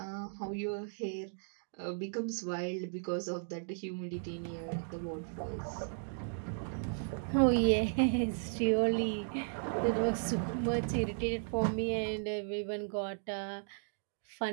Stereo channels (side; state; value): left; silent; digital silence